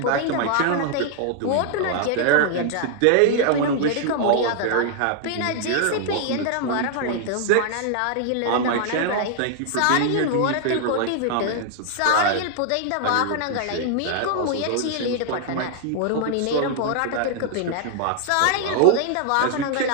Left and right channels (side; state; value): both; different; correlation -0.01